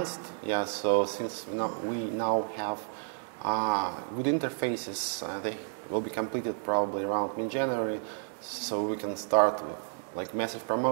Yeah, so since we now have good interfaces, they will be completed probably around mid-January, so we can start with like massive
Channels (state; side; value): silent; left; digital silence